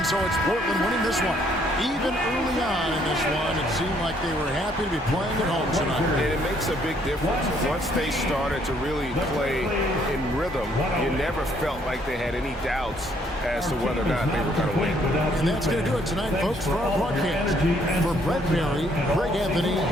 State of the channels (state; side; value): normal; both; correlation 0.67